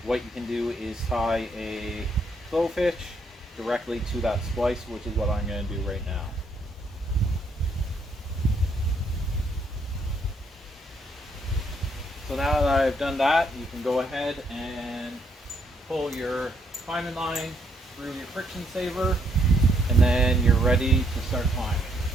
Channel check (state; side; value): normal; both; correlation 0.72